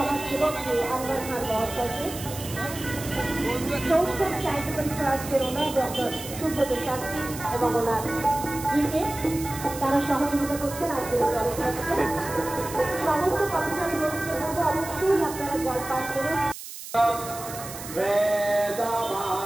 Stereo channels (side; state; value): right; noise; hiss, 11 dB below the sound